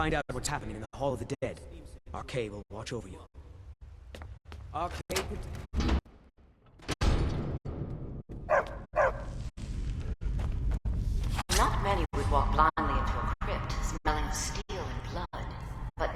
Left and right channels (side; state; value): both; identical; correlation 1.00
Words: out what's happening in the Hall of the Dead. Arcade will watch over you. Arcade... Not many would walk blindly into a crypt, smelling steel and blood, but